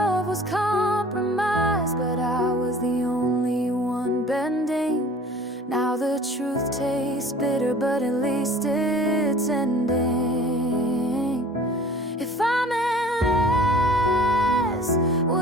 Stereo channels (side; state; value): both; normal; correlation 0.47